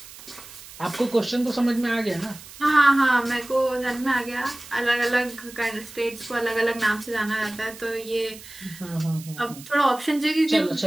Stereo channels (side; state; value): right; noise; hiss, 17 dB below the sound